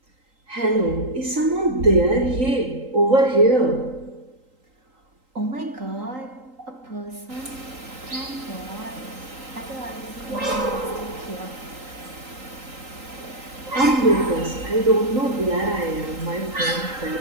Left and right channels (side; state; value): left; late; 3.8 ms